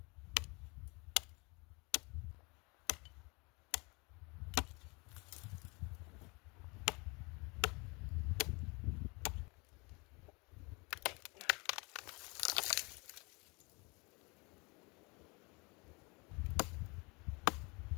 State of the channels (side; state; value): right; quieter; 28.4 dB